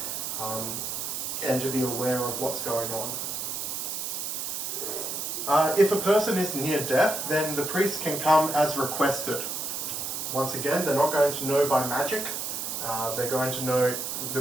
and to be aware of what's going on. If a person is near death, then the priest can come as requested. Once again, they're not going to know by magic. They're going to know, the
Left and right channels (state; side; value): noise; right; hiss, 3 dB below the sound